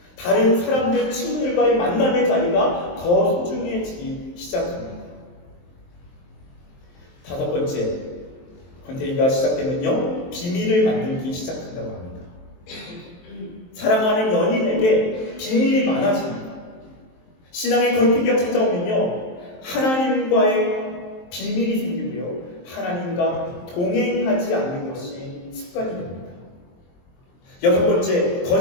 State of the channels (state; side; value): late; right; 23 ms